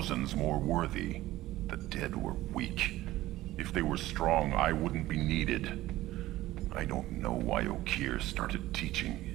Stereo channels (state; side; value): quieter; left; 16.2 dB